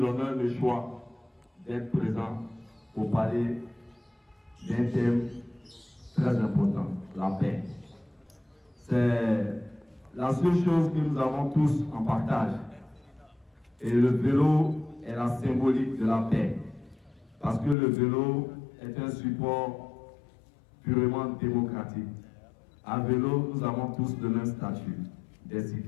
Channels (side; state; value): right; drops out; at 17.8 s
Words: a le choix d'être présent pour parler d'un thème très important, la paix. C'est la seule chose que nous avons tous en partage. Et le vélo est la symbolique de la paix. Parce que le vélo est un support purement démocratique. À vélo, nous avons tous le même statut des